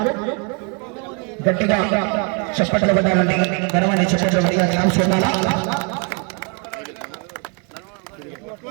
గట్టిగా చప్పట్లు పడ్డారండి. ఘనమైన చప్పట్లు పడిగా ఛాన్స్ ఉండాలా?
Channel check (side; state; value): left; quieter; 33.7 dB